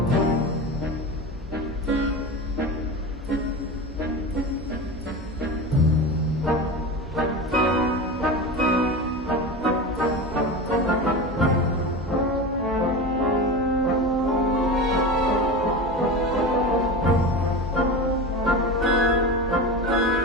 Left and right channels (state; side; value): normal; both; correlation 0.26